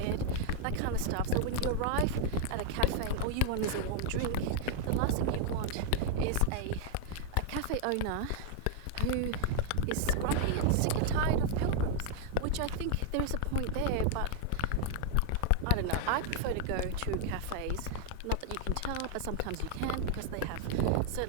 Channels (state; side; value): different; both; correlation 0.00